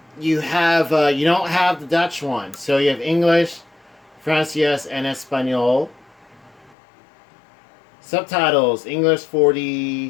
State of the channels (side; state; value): right; drops out; at 6.8 s